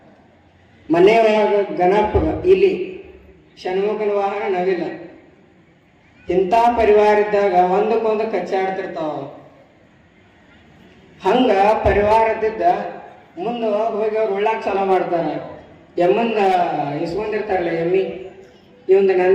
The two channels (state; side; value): identical; both; correlation 1.00